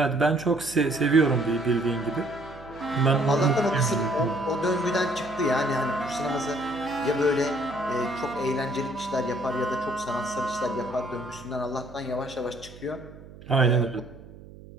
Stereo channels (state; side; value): noise; right; hum, 18 dB below the sound